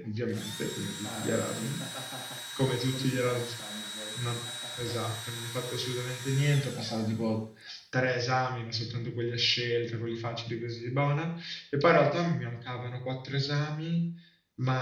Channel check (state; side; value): identical; both; correlation 1.00